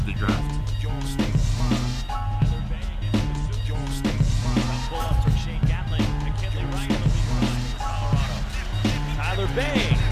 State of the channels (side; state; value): both; identical; correlation 1.00